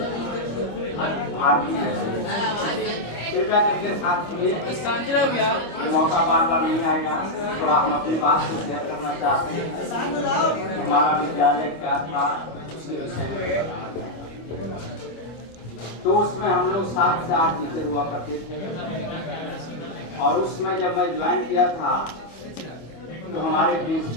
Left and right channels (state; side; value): late; right; 25 ms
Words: कृपया करके साथ ये मौका बार बार नहीं आएगा। थोड़ा हम अपनी बात को शेयर करना चाहते हैं। हमारा विद्यालय क्या था उसके विषय में बताना चाहते हैं। तो उसमें हम लोग 7 से 8 टीचर हुआ करते थे और उसमें जब मैं ज्वाइन किया था तो हमारे